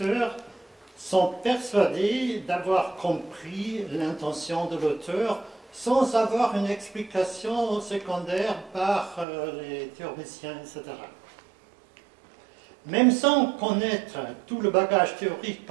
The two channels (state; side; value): drops out; left; at 9.2 s